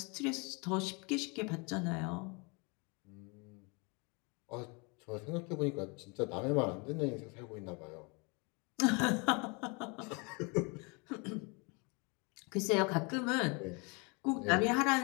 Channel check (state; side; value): quieter; right; 30.8 dB